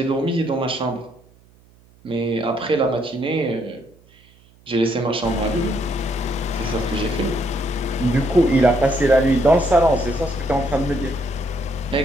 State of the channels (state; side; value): noise; right; hum, 29 dB below the sound